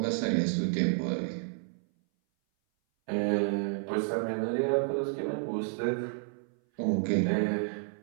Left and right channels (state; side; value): silent; left; 57 dB below the other